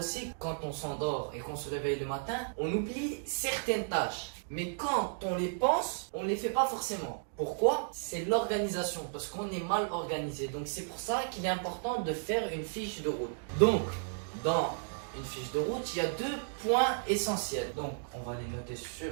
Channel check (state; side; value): silent; left; digital silence